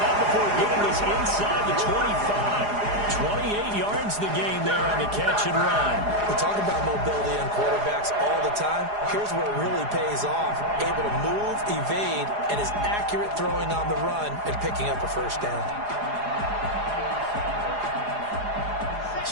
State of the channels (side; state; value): left; late; 4.9 ms